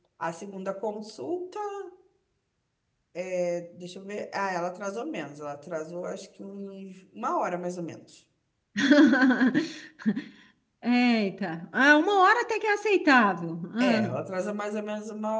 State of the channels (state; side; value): identical; both; correlation 1.00